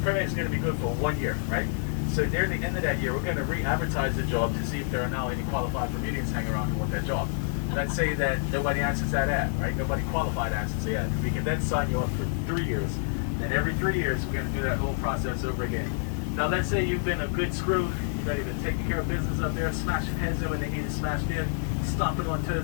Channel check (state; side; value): silent; right; digital silence